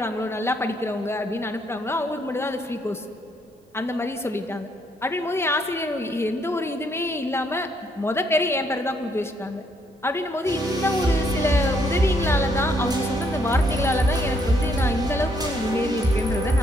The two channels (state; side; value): normal; both; correlation 0.71